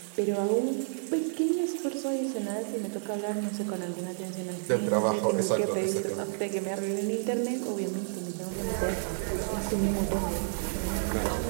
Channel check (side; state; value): left; silent; digital silence